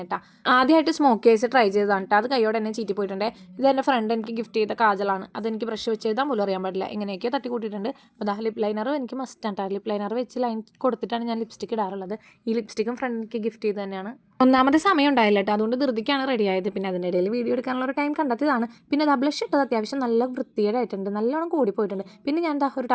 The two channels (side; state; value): both; identical; correlation 1.00